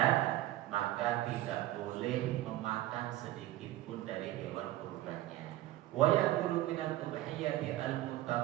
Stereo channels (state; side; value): quieter; left; 15.3 dB